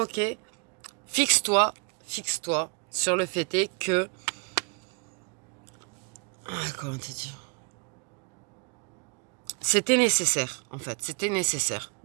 Fixe-toi sur le fait est que... comment te dire? C'était nécessaire, en fait. C'était nécessaire.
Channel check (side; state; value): left; quieter; 33.4 dB